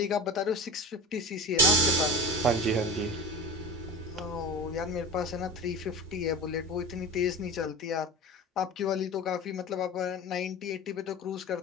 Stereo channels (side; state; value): both; normal; correlation 0.29